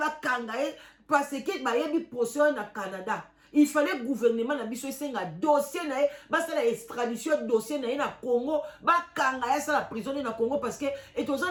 ye parce que ba yebi procès na Canada. Il fallait le gouvernement na biso esenga dossier na basala extradition dossier na Congo ba kanga ya la prison na Congo parce que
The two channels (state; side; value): identical; both; correlation 1.00